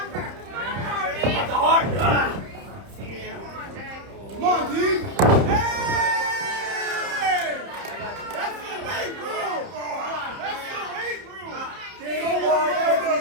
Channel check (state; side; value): late; left; 30 ms